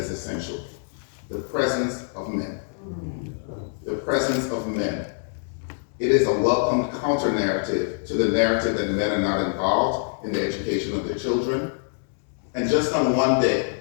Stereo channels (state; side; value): silent; right; digital silence